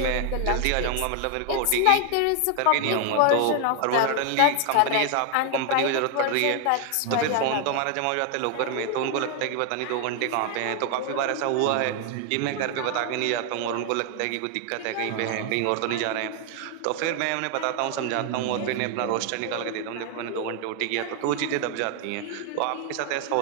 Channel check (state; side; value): different; both; correlation 0.00